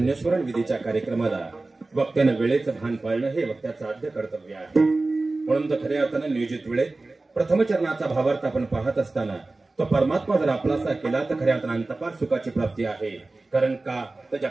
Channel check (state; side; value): quieter; left; 3.2 dB